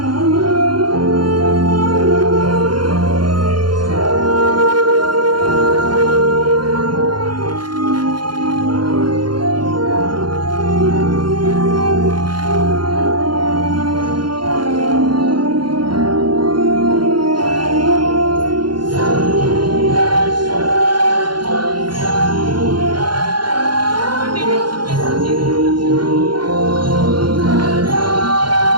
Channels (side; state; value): left; late; 0.71 ms